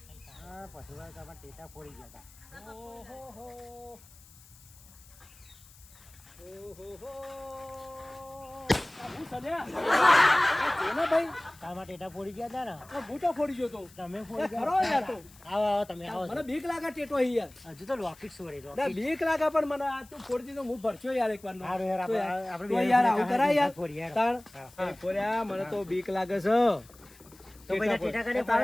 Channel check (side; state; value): left; noise; hiss, 24 dB below the sound